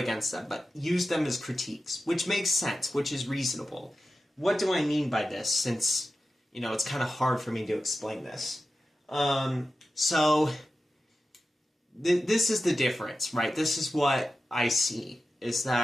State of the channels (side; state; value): both; normal; correlation 0.93